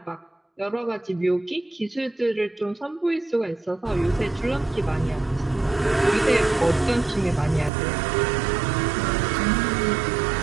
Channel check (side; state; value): left; drops out; at 7.7 s